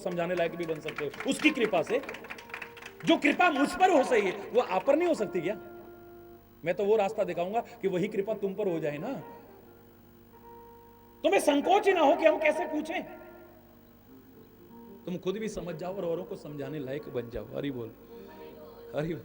लायक भी बन सकते हो उसकी कृपा से। जो कृपा मुझ पर हो सही है वो आप पर नहीं हो सकती क्या? मैं तो वो रास्ता दिखाऊंगा कि वही कृपा तुम पर हो जाए ना। तुम्हें संकोच ही ना हो कि हम कैसे पूछें, तुम खुद भी समझ जाओ और औरों को समझाने लायक बन जाओ। हरि बोल, हरि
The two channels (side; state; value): both; identical; correlation 1.00